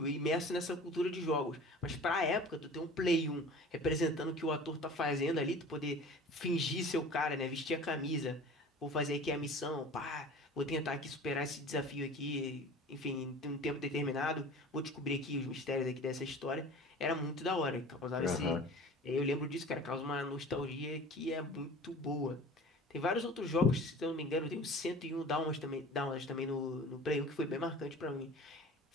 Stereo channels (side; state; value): both; normal; correlation 0.41